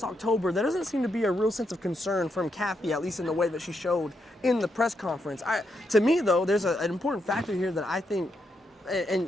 October, there doesn't seem to be a real sense of concern from Kathy, at least in the way that she showed in the press conference. To me, though, there's an important factor here that I think,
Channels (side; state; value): both; normal; correlation 0.80